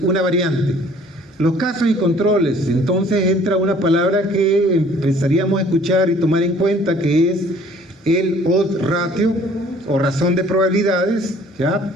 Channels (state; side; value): normal; both; correlation 0.55